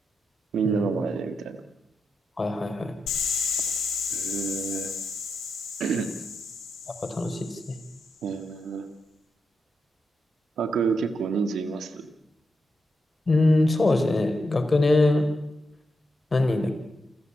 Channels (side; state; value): both; normal; correlation 0.85